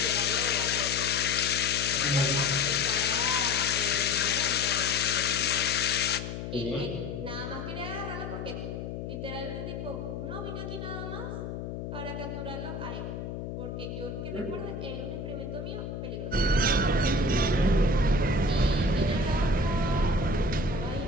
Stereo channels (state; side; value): noise; left; hum, 6 dB below the sound